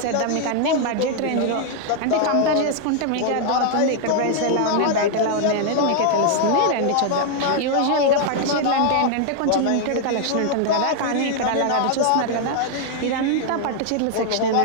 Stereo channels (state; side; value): different; both; correlation 0.00